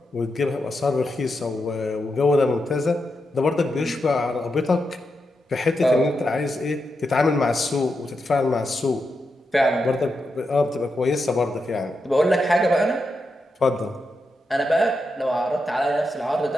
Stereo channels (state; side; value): normal; both; correlation 0.86